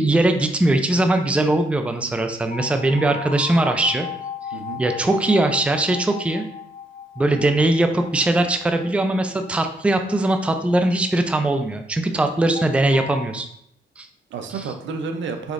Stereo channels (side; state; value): both; normal; correlation 0.78